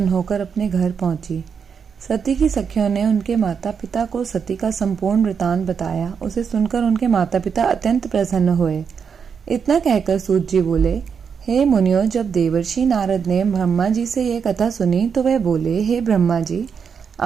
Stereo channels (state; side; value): quieter; left; 6.6 dB